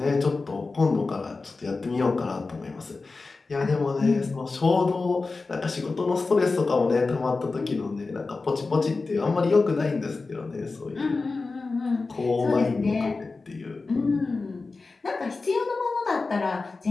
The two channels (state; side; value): quieter; right; 3.9 dB